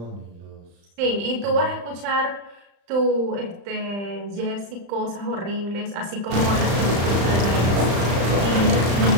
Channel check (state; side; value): late; left; 35 ms